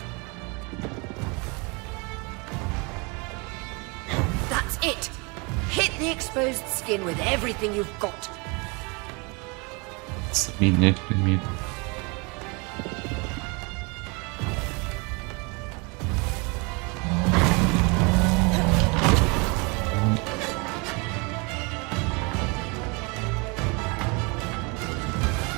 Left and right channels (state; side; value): quieter; left; 29.9 dB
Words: That's it. Hit the exposed skin with everything you've got. Subi nele primeiro.